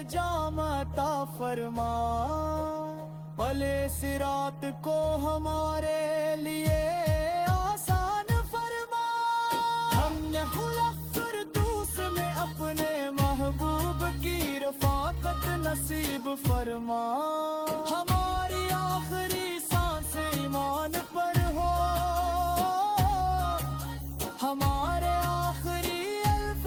جام عطا فرما، بھلے صراط کو ہمارے لیے آسان فرما، ہم نے خلق فردوس میں اپنے محبوب کی رفاقت نصیب فرما، ہماری آخری سانس ایمان پر ہو، ہمارے آخری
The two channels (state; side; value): identical; both; correlation 1.00